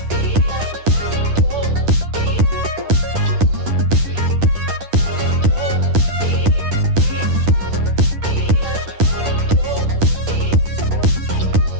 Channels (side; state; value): left; late; 10 ms